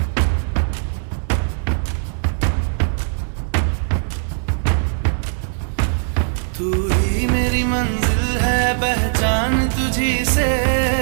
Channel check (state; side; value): silent; left; digital silence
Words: तू ही मेरी मंजिल है पहचान तुझी से,